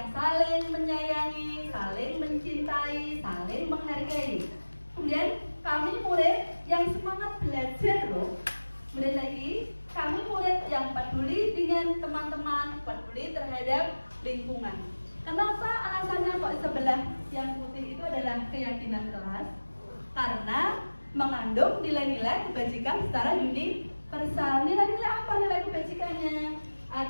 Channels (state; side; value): inverted; both; correlation -1.00